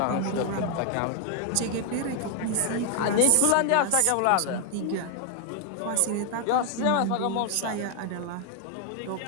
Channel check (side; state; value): both; different; correlation 0.01